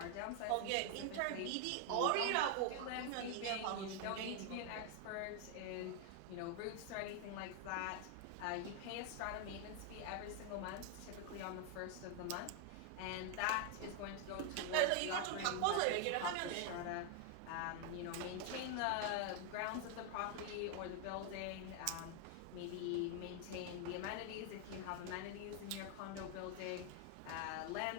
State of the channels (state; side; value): different; both; correlation 0.00